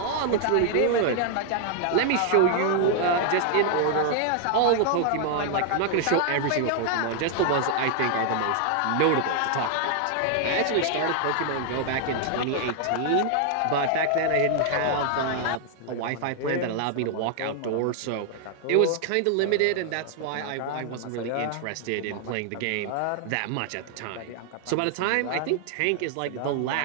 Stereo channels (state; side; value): different; both; correlation 0.00